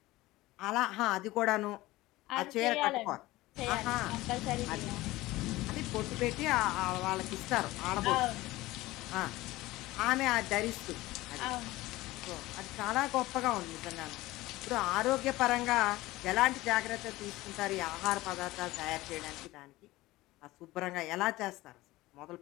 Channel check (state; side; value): quieter; right; 18.6 dB